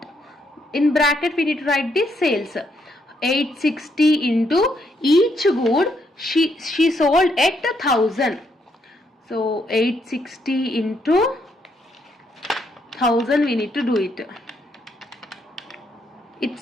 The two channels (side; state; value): both; normal; correlation 0.75